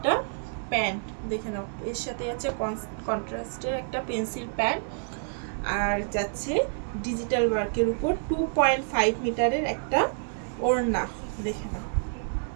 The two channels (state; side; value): silent; left; digital silence